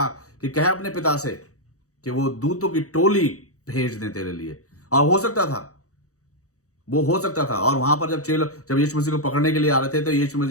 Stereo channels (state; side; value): late; right; 0.65 ms